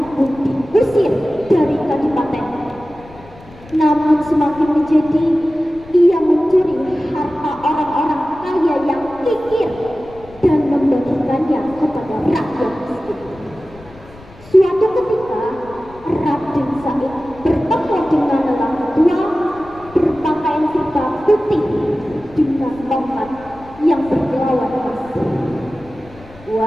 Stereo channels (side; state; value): left; noise; rumble, 22 dB below the sound